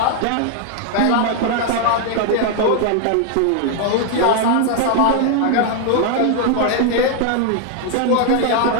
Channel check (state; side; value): different; both; correlation 0.00